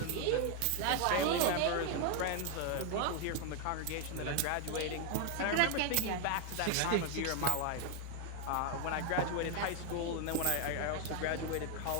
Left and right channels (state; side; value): different; both; correlation 0.01